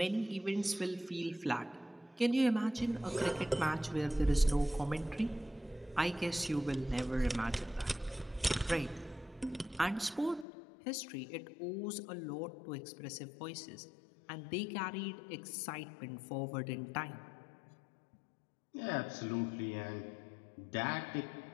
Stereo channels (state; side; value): drops out; right; at 10.5 s